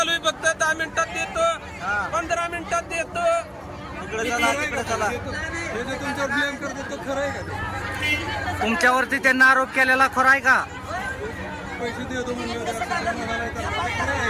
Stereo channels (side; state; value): both; identical; correlation 1.00